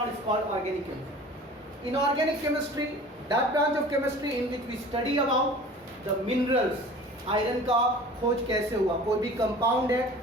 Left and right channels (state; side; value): normal; both; correlation 0.43